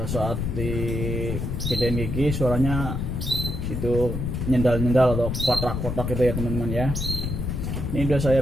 saat di gedein gigi suaranya itu nyendal-nyendal atau kotak-kotak gitu ya teman-teman ya. Ini udah saya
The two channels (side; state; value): left; noise; rumble, 3 dB below the sound